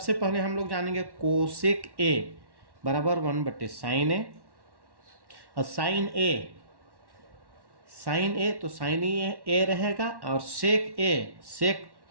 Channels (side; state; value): left; late; 1.1 ms